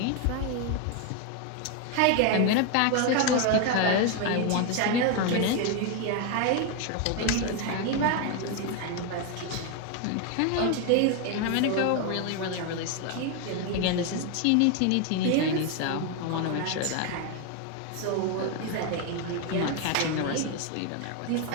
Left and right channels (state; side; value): different; both; correlation 0.01